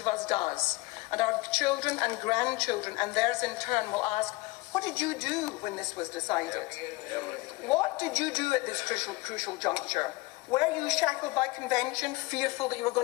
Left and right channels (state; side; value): quieter; right; 22.2 dB